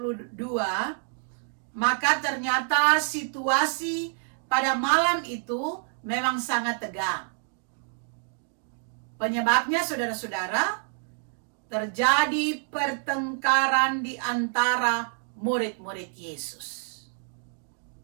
maka ternyata situasi pada malam itu memang sangat tegang. Penyebabnya saudara-saudara, terjadi pertengkaran di antara murid-murid Yesus.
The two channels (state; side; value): silent; left; 60 dB below the other